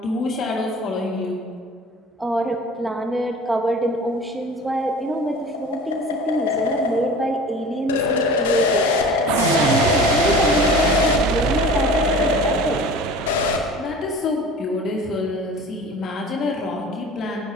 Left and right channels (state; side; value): normal; both; correlation 0.41